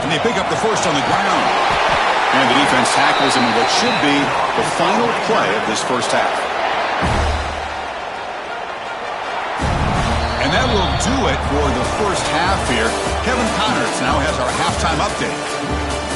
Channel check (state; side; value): identical; both; correlation 1.00